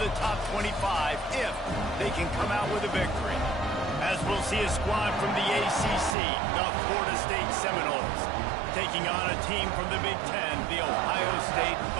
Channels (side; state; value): left; drops out; at 6.2 s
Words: top 25 if they can come out with a victory. As we'll see a squad from the ACC, the Florida State Seminoles, taking on a team from the Big Ten, the Ohio State